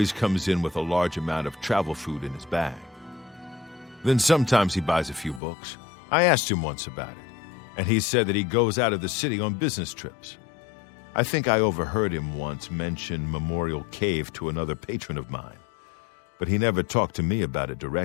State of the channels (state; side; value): drops out; right; at 5.4 s